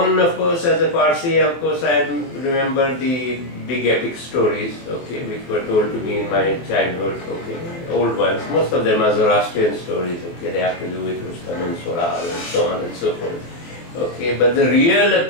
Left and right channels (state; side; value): late; right; 23 ms